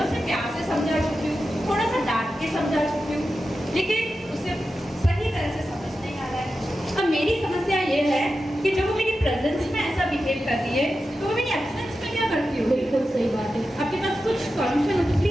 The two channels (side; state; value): both; normal; correlation 0.91